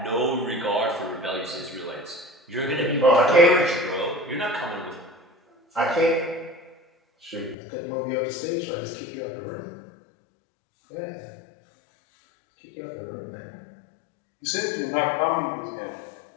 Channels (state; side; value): drops out; right; at 7.6 s